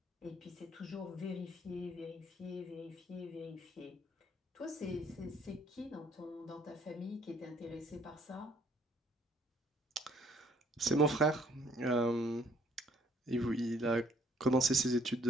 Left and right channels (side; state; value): both; normal; correlation 0.62